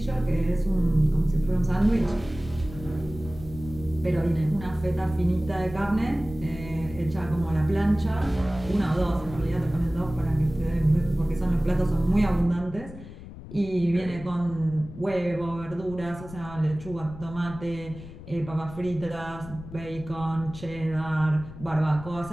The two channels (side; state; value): left; noise; rumble, 14 dB below the sound